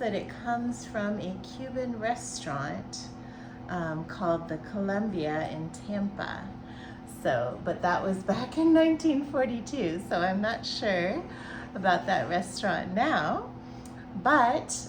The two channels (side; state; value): both; identical; correlation 1.00